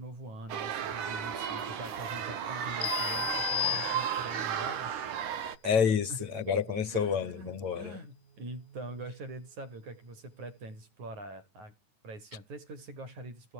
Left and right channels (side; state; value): left; late; 9.0 ms